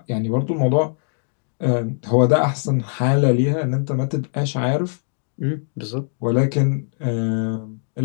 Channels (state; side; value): silent; right; digital silence